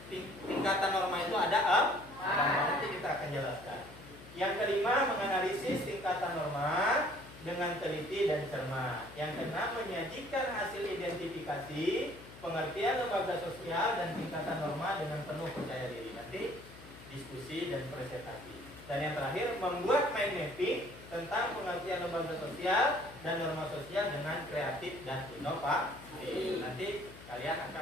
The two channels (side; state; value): left; noise; hum, 18 dB below the sound